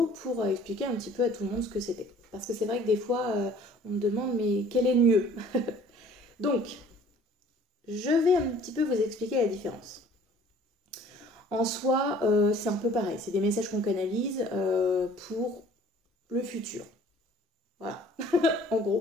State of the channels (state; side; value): normal; both; correlation 0.53